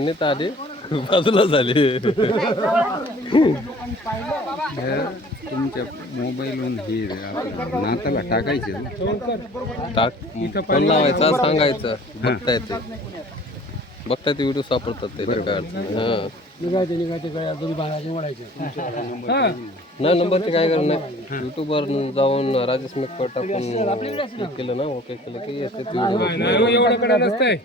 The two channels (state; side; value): normal; both; correlation 0.50